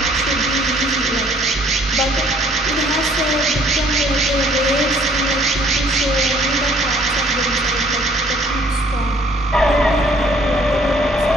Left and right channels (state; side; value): normal; both; correlation 0.60